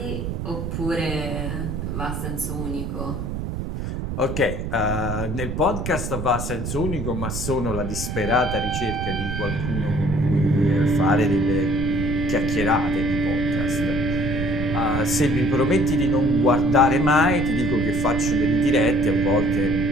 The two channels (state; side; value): noise; right; rumble, 4 dB below the sound